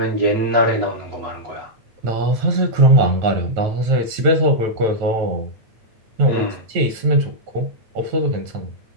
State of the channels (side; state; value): left; late; 9.1 ms